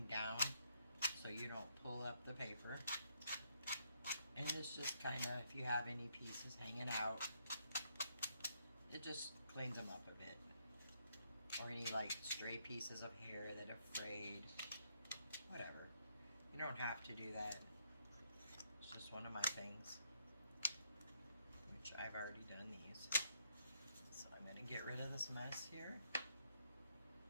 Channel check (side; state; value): both; inverted; correlation -0.74